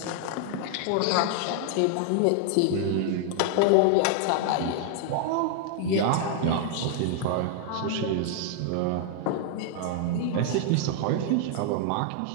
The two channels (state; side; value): different; both; correlation 0.00